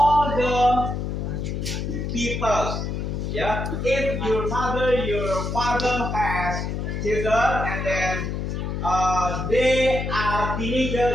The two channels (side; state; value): left; noise; hum, 3 dB below the sound